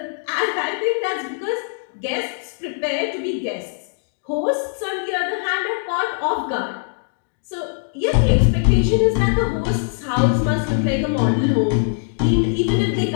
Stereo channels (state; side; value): silent; right; digital silence